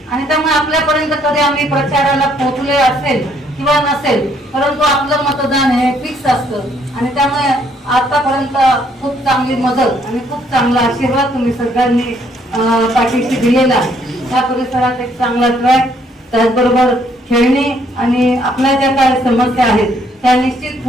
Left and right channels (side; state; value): both; normal; correlation 0.67